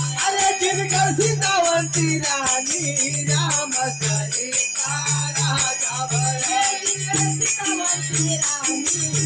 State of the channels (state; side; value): identical; both; correlation 1.00